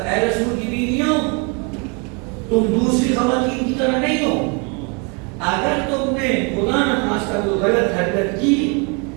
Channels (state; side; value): quieter; left; 33.5 dB